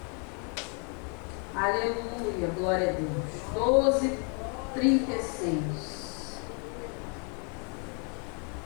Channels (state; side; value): quieter; right; 38.3 dB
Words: Aleluia, glória a Deus. 12, 36.